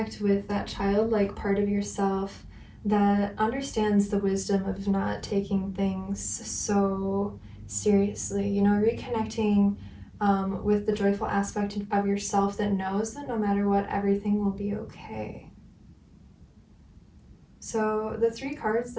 with that childlike part of yourself that understands the wisdom of not taking things so seriously. Reconnecting with the joyful aspect of yourself that knows that no matter what, everything will be okay. So the 3 cards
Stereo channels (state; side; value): identical; both; correlation 1.00